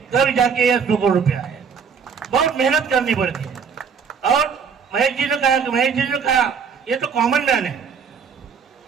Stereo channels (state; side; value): quieter; left; 6.2 dB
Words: तब जाके ये 100 करोड़ रुपया आए। बहुत मेहनत करनी पड़ती है। और महेश जी ने कहा ये तो कॉमन मैन है,